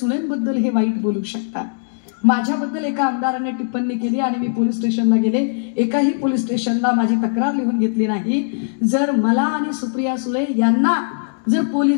हे वाईट बोलू शकतात. माझ्याबद्दल एका आमदाराने टिप्पणी केली आणि मी पोलीस स्टेशनला गेले. एकाही पोलीस स्टेशनला माझी तक्रार लिहून घेतली नाही. जर मला आणि सुप्रिया सुळे यांना जर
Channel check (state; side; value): silent; right; digital silence